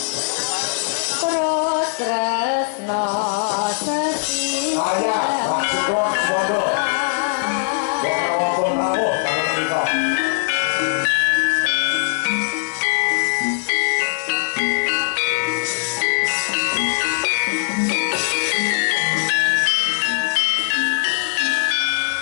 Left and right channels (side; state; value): right; silent; 58 dB below the other